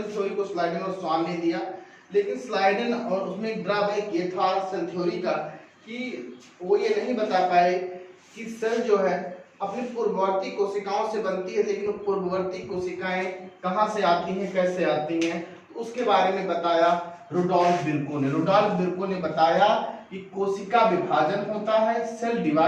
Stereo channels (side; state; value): both; identical; correlation 1.00